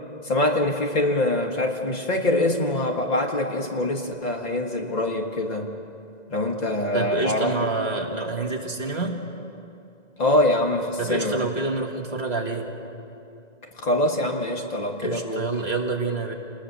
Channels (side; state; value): right; late; 2.0 ms